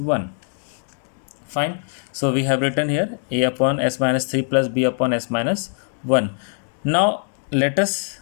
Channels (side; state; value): right; silent; digital silence